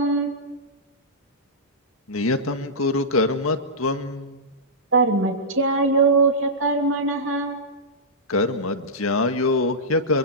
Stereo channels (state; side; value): normal; both; correlation -0.14